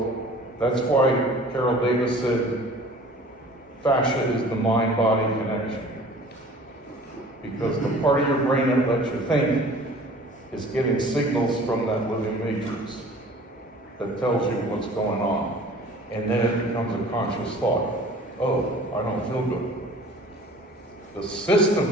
that's why Carol Davis said fascia is the mind-body connection. Because the part of your brain that lets you think is getting signals from that living matrix that tells you what's going on. And then it becomes a conscious thought. Oh, I don't feel good. The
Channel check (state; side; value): normal; both; correlation 0.47